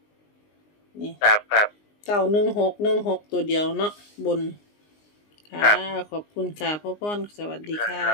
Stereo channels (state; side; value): late; right; 19 ms